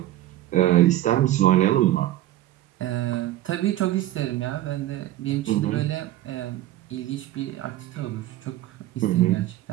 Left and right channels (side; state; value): left; quieter; 14.5 dB